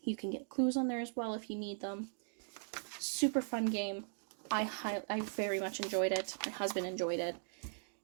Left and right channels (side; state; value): left; silent; digital silence